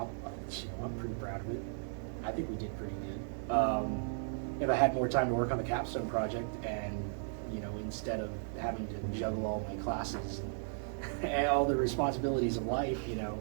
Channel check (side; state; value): left; silent; digital silence